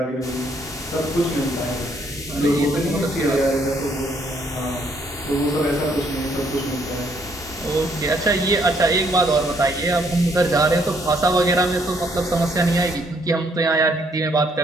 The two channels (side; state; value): both; normal; correlation 0.69